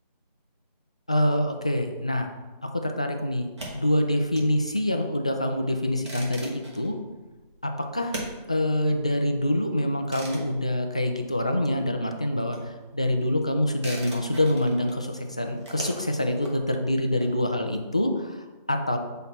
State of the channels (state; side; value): inverted; both; correlation -0.84